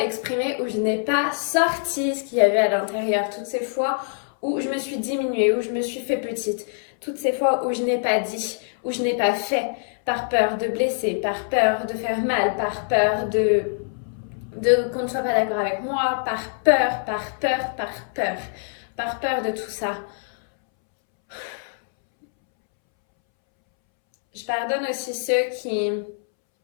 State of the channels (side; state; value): right; silent; 63 dB below the other